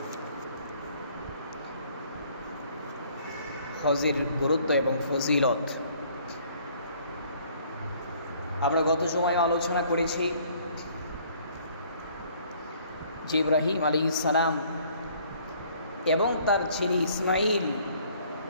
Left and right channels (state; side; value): inverted; both; correlation -0.59